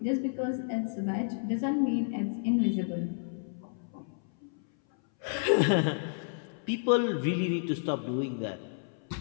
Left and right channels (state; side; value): silent; right; 57 dB below the other